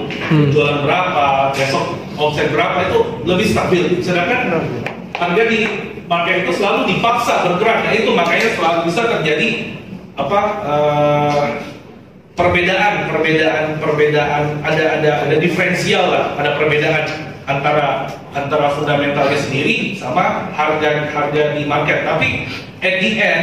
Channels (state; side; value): identical; both; correlation 1.00